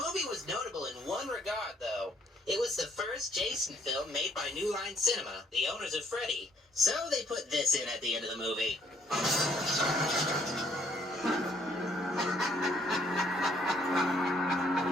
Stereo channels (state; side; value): normal; both; correlation 0.65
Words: was notable in one regard, though. It was the first Jason film made by New Line Cinema, the owners of Freddy. So they put this in at the end of the movie.